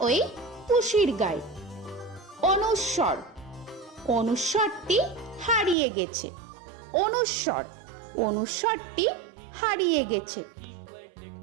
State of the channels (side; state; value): left; drops out; at 5.8 s